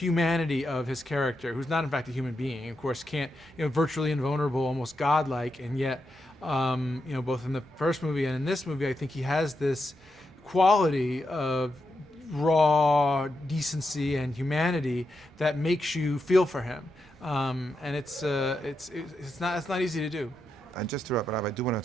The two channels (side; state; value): both; normal; correlation 0.85